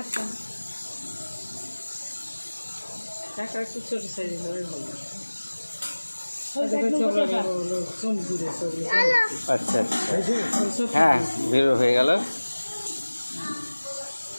টাকা একটু ছোট সাইজের হবে ভালো। আচ্ছা হ্যাঁ বেরো হয়ে গেল।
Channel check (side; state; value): both; inverted; correlation -1.00